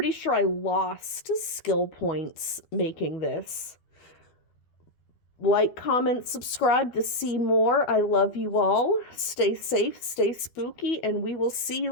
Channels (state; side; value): late; right; 12 ms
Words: sure I lost skill points making this. Like, comment, subscribe to see more. I love you all. Stay safe, stay spooky, and we will see you